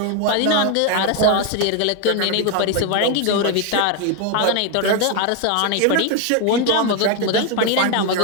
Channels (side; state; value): both; different; correlation 0.01